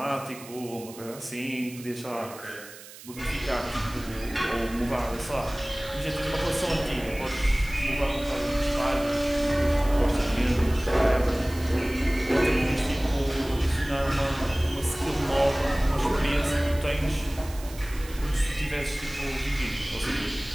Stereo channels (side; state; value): right; noise; hiss, 17 dB below the sound